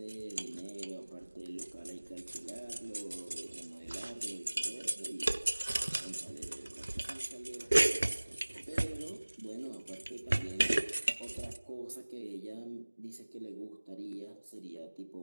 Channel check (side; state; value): both; inverted; correlation -1.00